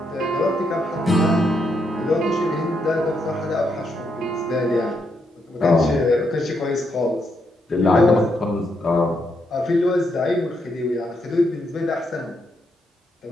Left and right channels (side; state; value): both; normal; correlation 0.79